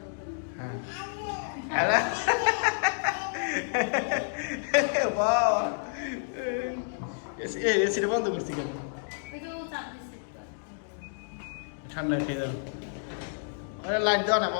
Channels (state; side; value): silent; right; digital silence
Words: হ্যাঁ হ্যালো বাবা, এসিটা বন্ধ করছি কেন? ঠান্ডা খেয়ে যাও। লাইট দাও না